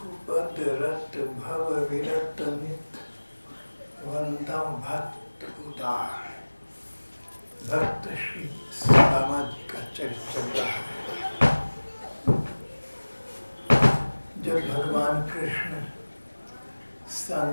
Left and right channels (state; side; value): inverted; both; correlation -1.00